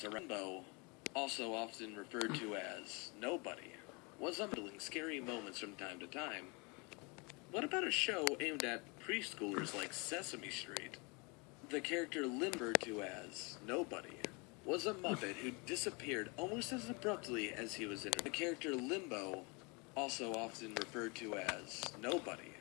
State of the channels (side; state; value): right; quieter; 29.8 dB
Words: around. Limbo, also often referred to as Nobody, was unveiling scary moments from time to time. What about a show aimed at preschoolers like Sesame Street? The character Limbo, referred to as Nobody, was a Muppet who disappeared almost as abruptly as he was introduced. The character Limbo, also often referred to as Nobody,